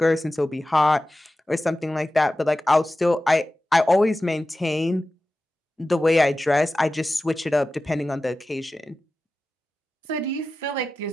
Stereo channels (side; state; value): both; normal; correlation 0.94